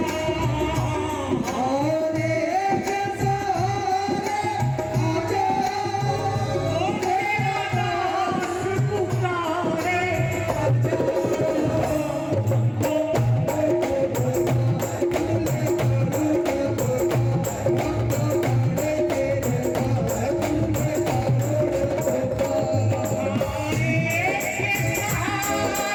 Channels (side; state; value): both; identical; correlation 1.00